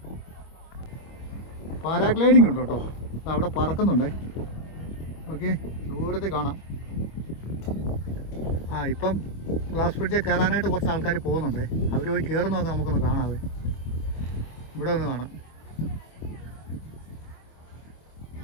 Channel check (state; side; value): late; right; 25 ms